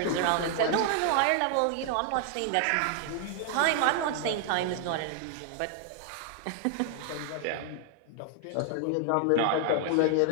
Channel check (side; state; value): both; different; correlation 0.00